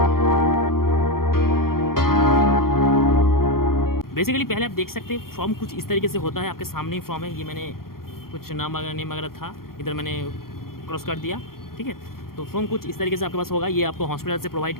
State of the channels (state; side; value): late; right; 0.93 ms